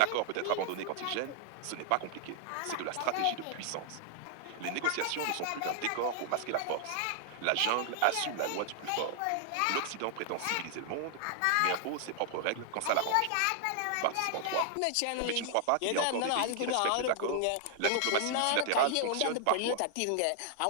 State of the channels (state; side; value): different; both; correlation 0.00